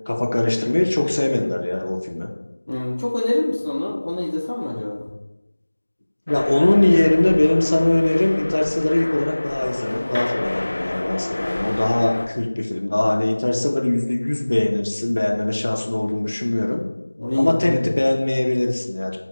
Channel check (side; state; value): both; inverted; correlation -1.00